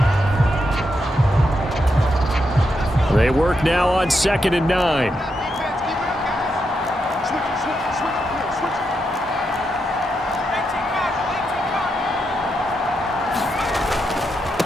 They work now on 2nd and 9.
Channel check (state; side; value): normal; both; correlation 0.83